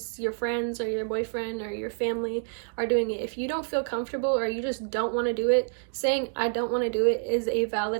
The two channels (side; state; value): left; silent; digital silence